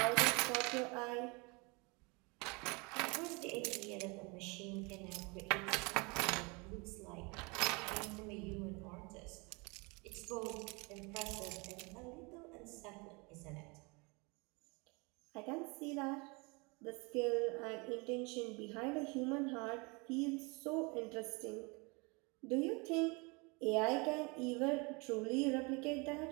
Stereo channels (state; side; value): quieter; left; 29.0 dB